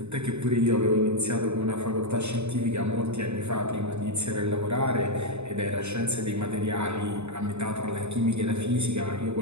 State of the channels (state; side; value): late; left; 0.81 ms